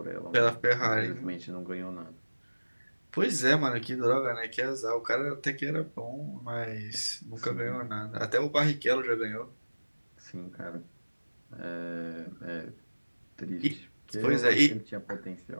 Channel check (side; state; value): both; inverted; correlation -1.00